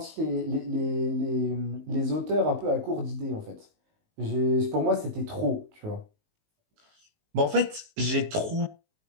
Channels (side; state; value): left; late; 19 ms